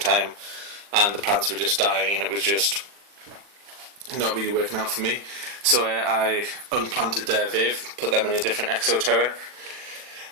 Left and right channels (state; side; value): late; left; 40 ms